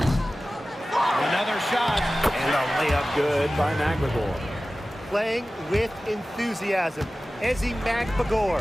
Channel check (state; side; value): normal; both; correlation 0.96